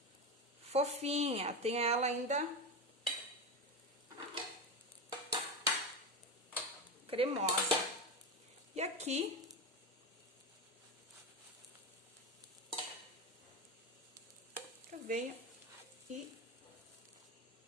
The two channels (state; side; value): normal; both; correlation 0.17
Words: fofinha, tenho ela ainda cremosa. E aqui eu venho e